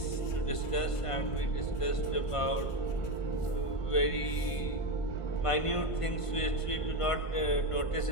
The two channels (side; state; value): right; late; 1.5 ms